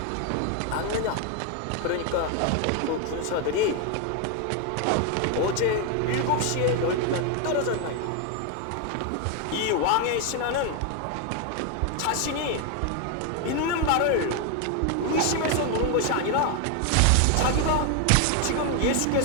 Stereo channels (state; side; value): different; both; correlation 0.01